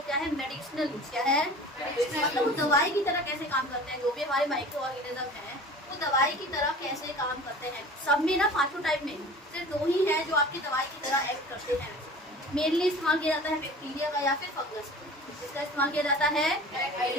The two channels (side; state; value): both; normal; correlation 0.41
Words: क्या है? Medicinal use. क्या है? मतलब वो दवाई की तरह कैसे काम करते हैं। जो भी हमारे माइक्रो ऑर्गेनिज्म है वो दवाई की तरह कैसे काम करते हैं। सब में ना पांचों टाइप में सिर्फ दो ही है जो आपकी दवाई की तरह एक्ट करते हैं। मेनली इस्तेमाल किया जाता है बैक्टीरिया का या फिर फंगस। इसका इस्तेमाल किया जाता है